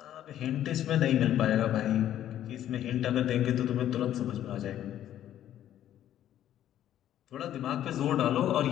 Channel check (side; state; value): right; quieter; 11.6 dB